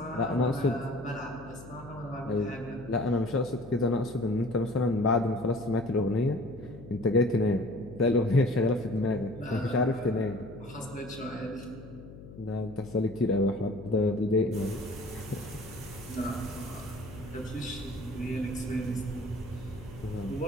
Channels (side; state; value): left; noise; hum, 16 dB below the sound